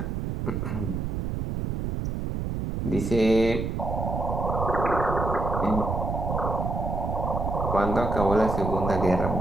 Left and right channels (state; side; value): noise; right; rumble, 2 dB below the sound